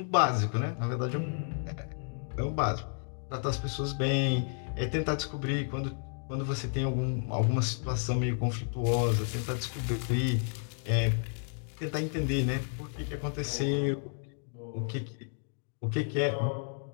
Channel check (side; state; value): right; silent; 55 dB below the other